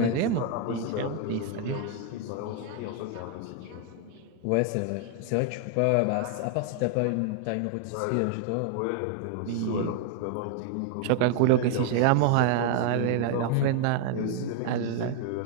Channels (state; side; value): different; both; correlation 0.00